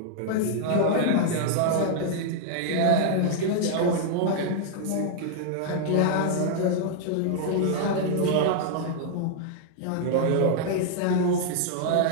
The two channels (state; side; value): different; both; correlation -0.01